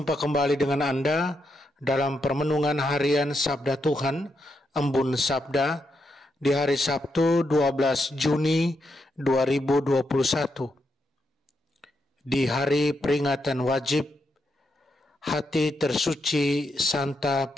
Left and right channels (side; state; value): both; normal; correlation 0.82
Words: kembali dengan Anda dalam permenungan harian Sabda Tuhan, Embun Sabda, di hari Sabtu 12 Juni 2021. Di hari peringatan wajib Hati Tersuci Santa